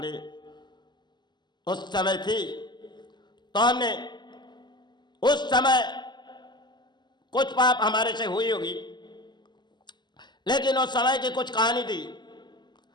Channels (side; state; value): right; late; 0.21 ms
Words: उस समय थी, तो हमने उस समय कुछ पाप हमारे से हुई होगी, लेकिन उस समय की कुछ कहानी थी।